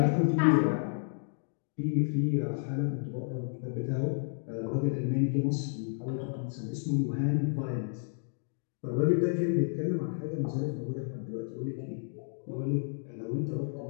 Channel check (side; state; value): right; silent; digital silence